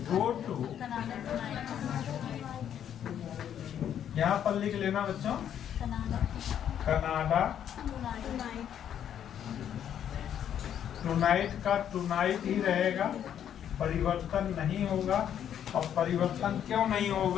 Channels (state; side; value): quieter; right; 9.6 dB